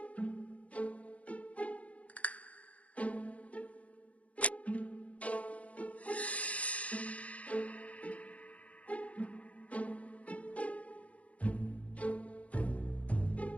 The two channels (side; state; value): right; late; 0.065 ms